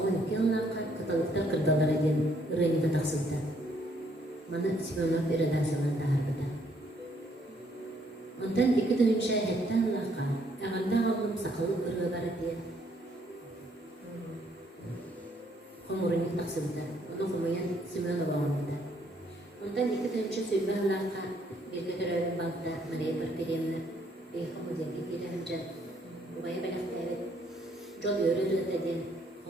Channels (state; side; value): normal; both; correlation 0.68